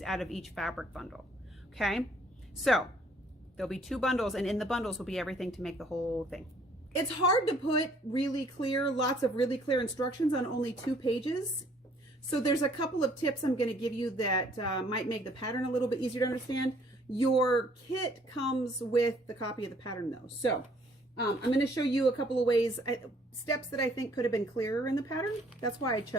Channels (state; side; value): normal; both; correlation 0.61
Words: out of each fabric bundle. Okay, so there'll be two bundles, and in the bundles will be everything to make the whole thing. It's hard to put lots of really clear instructions on only 2 pages. So there's a couple of tips I'm going to give you that might make the pattern a little bit easier to understand. Your kit comes with the copy of the pattern though. So I'm going to show you a couple of ways, steps that I think could have been clearer in the pattern. That's why I